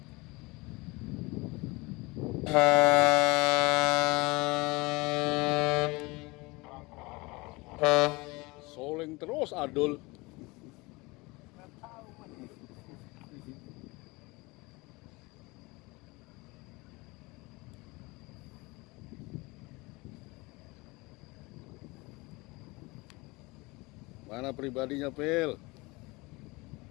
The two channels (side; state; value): right; quieter; 24.2 dB